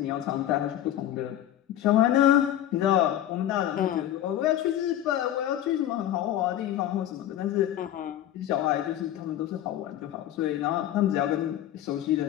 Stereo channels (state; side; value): quieter; right; 12.1 dB